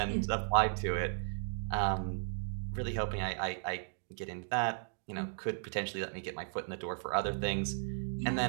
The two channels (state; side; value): silent; left; digital silence